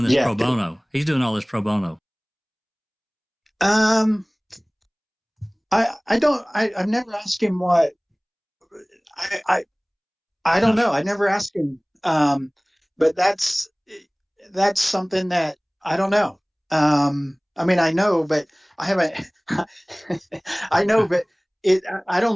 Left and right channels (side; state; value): both; identical; correlation 1.00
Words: this pro bono. He's doing all this pro bono. I've never asked him what. I don't know. I never asked him. But that's something that I don't know. I mean, I know, but I haven't. I know, but I don't